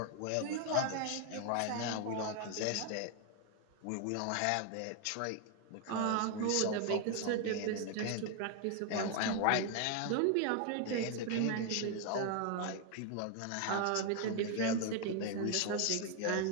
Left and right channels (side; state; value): both; different; correlation 0.01